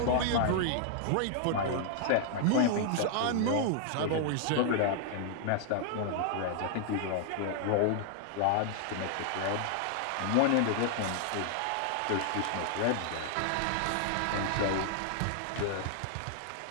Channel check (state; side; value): different; both; correlation 0.00